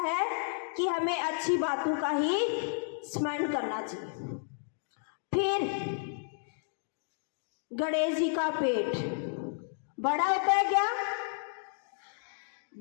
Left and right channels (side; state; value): right; silent; digital silence